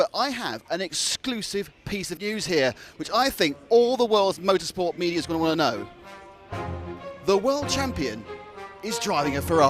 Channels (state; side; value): identical; both; correlation 1.00